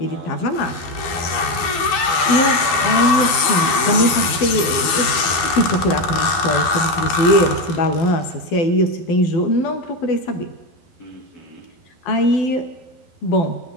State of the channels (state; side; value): late; right; 12 ms